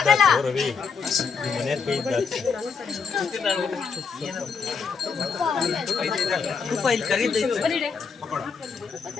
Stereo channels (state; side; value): quieter; right; 5.6 dB